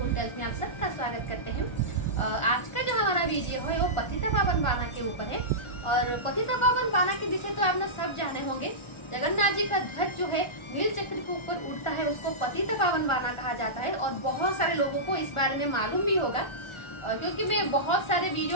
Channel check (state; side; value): late; right; 1.4 ms